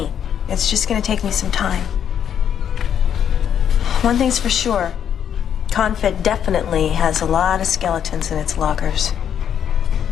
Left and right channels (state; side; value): quieter; right; 8.9 dB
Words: It's just gonna take me some time. One thing's for sure. Confed definitely has a lot of skeletons in its lockers.